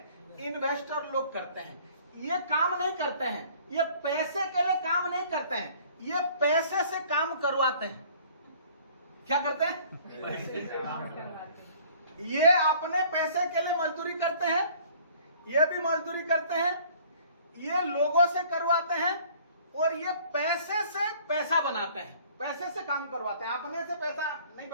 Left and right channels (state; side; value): inverted; both; correlation -0.54